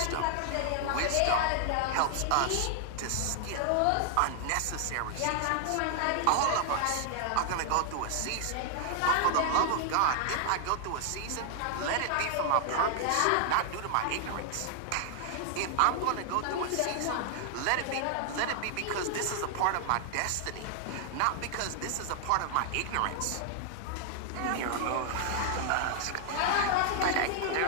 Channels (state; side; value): different; both; correlation 0.00